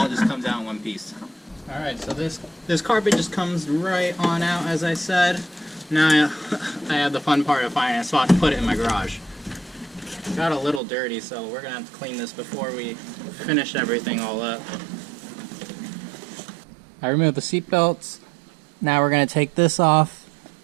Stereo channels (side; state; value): left; drops out; at 10.8 s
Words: just comes out in one piece. Alright, so this carpet just comes right on out, as I said. Now I have the fun part of finding a spot to put it in my garage. Got a little dirty, so we're going to have to clean this before we finish everything all up. I removed the seat belts. Now we're going to take this off.